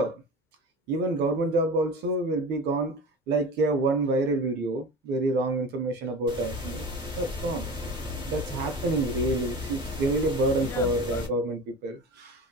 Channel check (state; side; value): normal; both; correlation 0.33